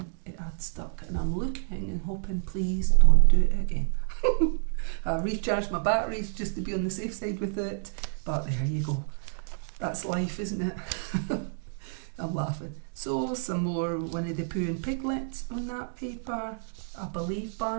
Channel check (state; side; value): silent; left; digital silence